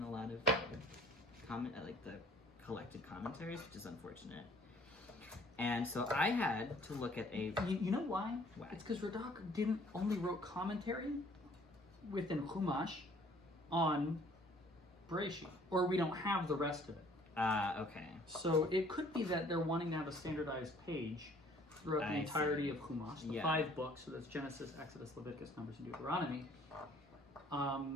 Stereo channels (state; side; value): normal; both; correlation 0.57